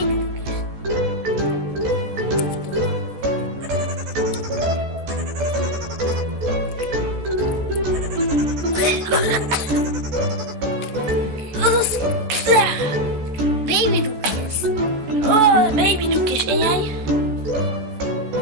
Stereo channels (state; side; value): late; left; 14 ms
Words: babydoekjes? Oh, babydoekjes. En jij?